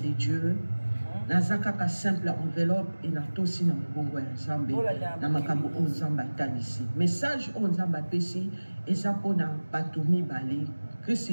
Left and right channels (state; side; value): inverted; both; correlation -1.00